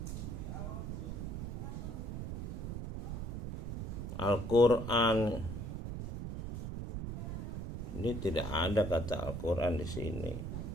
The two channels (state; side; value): noise; right; rumble, 5 dB below the sound